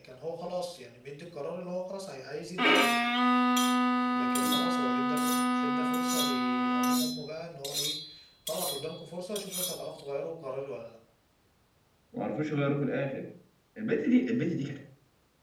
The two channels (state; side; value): identical; both; correlation 1.00